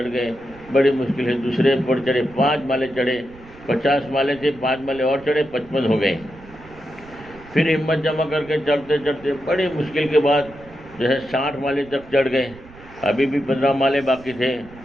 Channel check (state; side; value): noise; right; rumble, 21 dB below the sound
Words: گئے. بڑی مشکل ہے دوسرے پر چڑھے, 5 مالے چڑھے. 50 مالے تھے, 5 مالے اور چڑھے, 55 ہو گئے. پھر ہمت جمع کر کے چڑھتے چڑھتے بڑی مشکل کے بعد جو ہے 60 مالے تک چڑھ گئے. ابھی بھی 15 مالے باقی تھے.